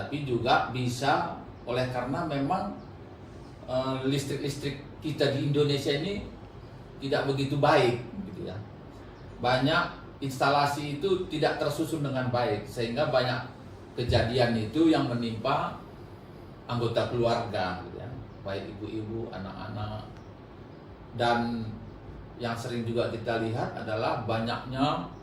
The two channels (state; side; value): identical; both; correlation 1.00